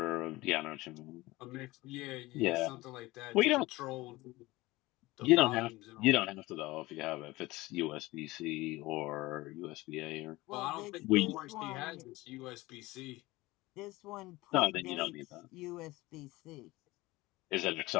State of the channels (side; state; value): right; quieter; 20.0 dB